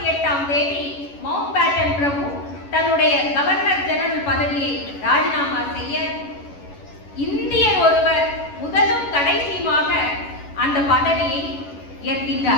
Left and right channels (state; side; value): late; right; 11 ms